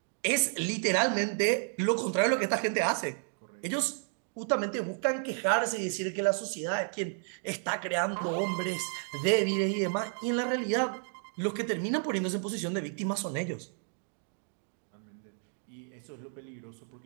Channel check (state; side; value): silent; left; 57 dB below the other